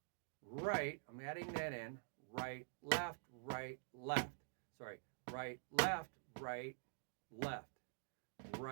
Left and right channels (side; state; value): left; silent; digital silence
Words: right, I'm adding that in. Right, left, left. Sorry, right, left, left.